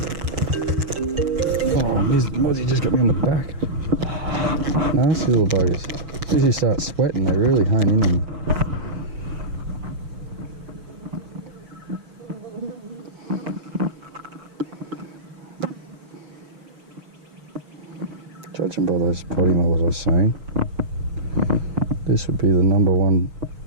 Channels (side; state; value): left; late; 6.3 ms